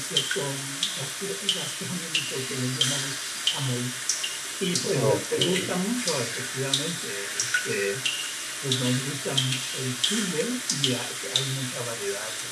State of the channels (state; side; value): identical; both; correlation 1.00